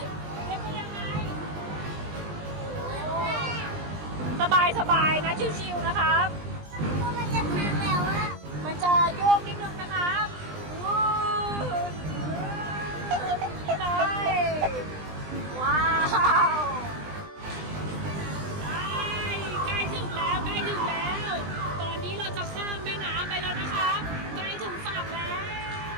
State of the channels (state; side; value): late; left; 20 ms